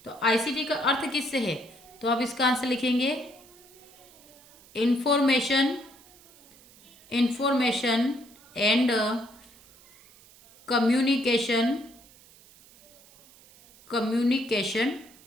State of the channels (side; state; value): right; noise; hiss, 25 dB below the sound